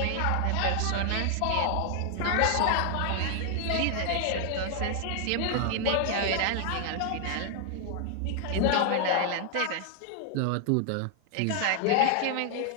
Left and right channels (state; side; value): different; both; correlation 0.00